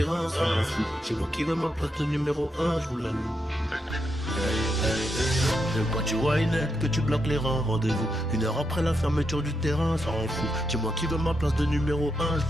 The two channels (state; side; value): normal; both; correlation 0.82